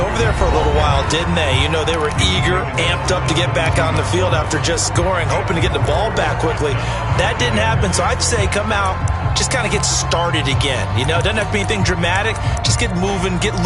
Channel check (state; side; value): identical; both; correlation 1.00